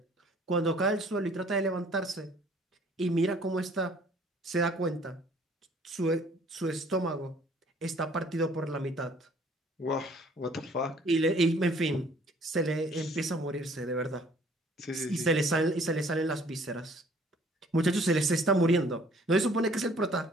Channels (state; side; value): normal; both; correlation 0.57